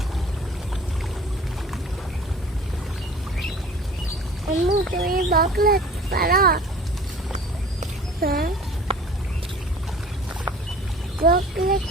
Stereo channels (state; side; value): normal; both; correlation 0.46